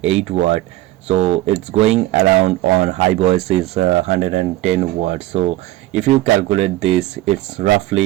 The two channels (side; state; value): left; quieter; 16.4 dB